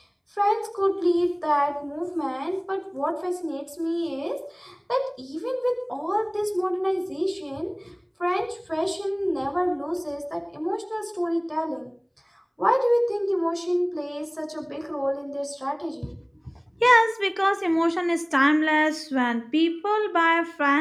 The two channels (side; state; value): both; identical; correlation 1.00